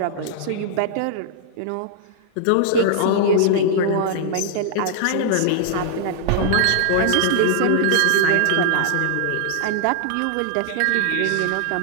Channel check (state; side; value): different; both; correlation -0.01